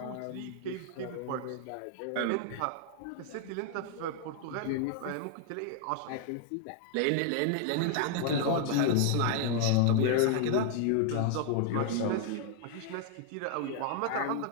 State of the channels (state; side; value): different; both; correlation 0.00